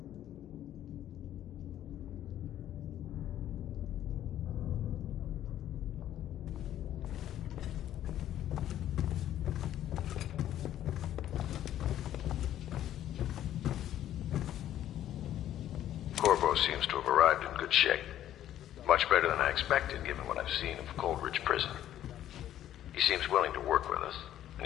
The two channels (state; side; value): quieter; right; 11.9 dB